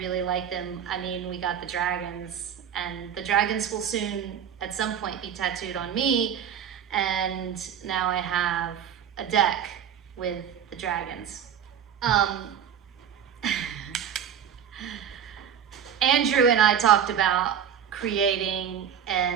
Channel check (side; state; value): left; quieter; 8.6 dB